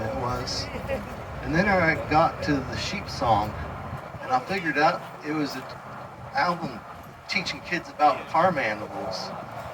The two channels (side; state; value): both; identical; correlation 1.00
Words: it was, and then I got to the sheep song, and I figured out it was an album teaching kids about farm animals.